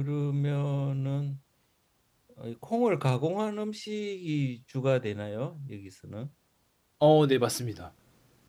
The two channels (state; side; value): identical; both; correlation 1.00